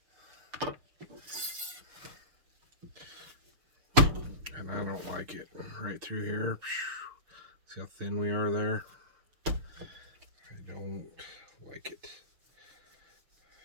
And I don't like it. Right through here. See how thin we are there? I don't like it.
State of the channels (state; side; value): late; left; 6.7 ms